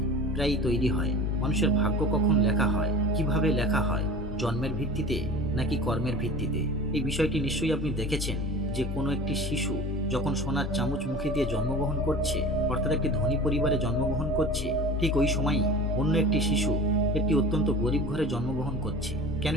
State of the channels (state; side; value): normal; both; correlation 0.38